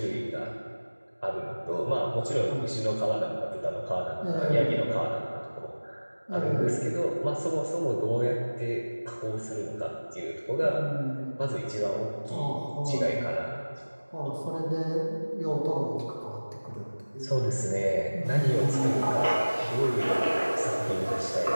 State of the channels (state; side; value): inverted; both; correlation -1.00